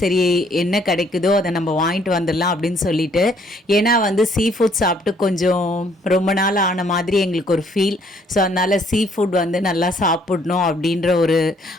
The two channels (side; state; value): both; normal; correlation 0.65